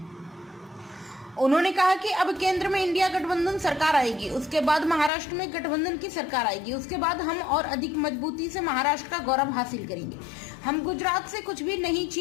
उन्होंने कहा कि अब केंद्र में इंडिया गठबंधन सरकार आएगी, उसके बाद महाराष्ट्र में गठबंधन की सरकार आएगी, उसके बाद हम और अधिक मजबूती से महाराष्ट्र का गौरव हासिल करेंगे। हम गुजरात से कुछ भी नहीं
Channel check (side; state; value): right; drops out; at 5.1 s